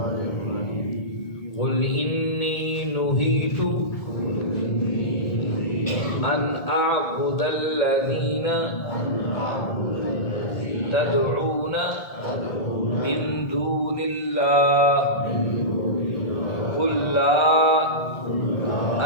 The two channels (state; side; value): late; right; 1.7 ms